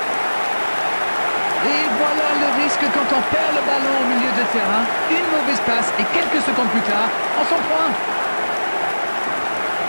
Et voilà le risque quand on perd le ballon au milieu de terrain. Une mauvaise passe et quelques secondes plus tard, on s'en prend.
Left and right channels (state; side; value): inverted; both; correlation -1.00